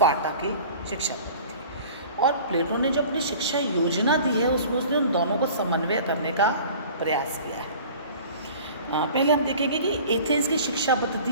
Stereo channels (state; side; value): inverted; both; correlation -0.44